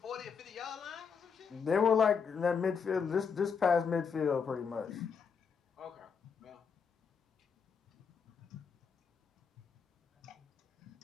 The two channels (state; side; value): quieter; right; 6.2 dB